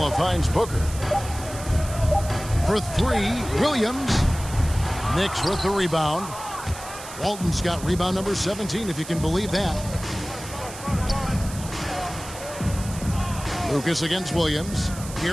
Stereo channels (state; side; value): noise; right; hiss, 13 dB below the sound